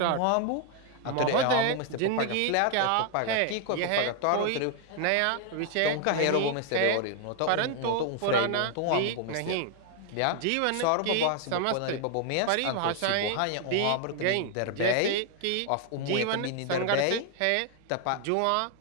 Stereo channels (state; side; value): different; both; correlation 0.00